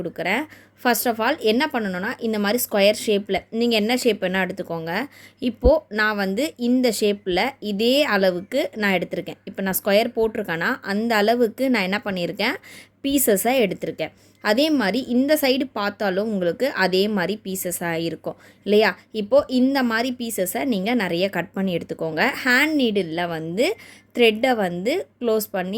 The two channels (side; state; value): both; identical; correlation 1.00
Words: ஃபர்ஸ்ட் ஆஃப் ஆல் என்ன பண்ணணுன்னா, இந்த மாதிரி ஸ்கொயர் ஷேப்பில் நீங்கள் என்ன ஷேப் வேணால் எடுத்துக்கோங்க. இப்போது நான் வந்து இந்த ஷேப்பில் இதே அளவுக்கு நான் எடுத்திருக்கேன். இப்போ நான் ஸ்கொயர் போட்டிருக்கேன்னா அந்த அளவுக்கு நான் என்ன பண்ணியிருக்கேன், பீசஸை எடுத்திருக்கேன். அதே மாதிரி இந்த சைடு பார்த்தாலும் உங்களுக்கு அதே மாதிரி பீசஸாக இருக்கும் இல்லையா? இப்போது இந்த மாதிரி பீசஸை நீங்கள் நிறைய கட் பண்ணி எடுத்துக்கோங்க. ஹேண்ட் நீடிலில் வந்து த்ரெட்டை வந்து க்ளோஸ்